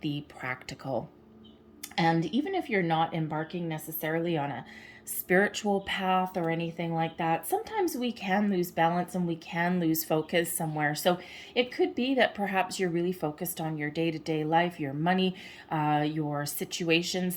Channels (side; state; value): both; identical; correlation 1.00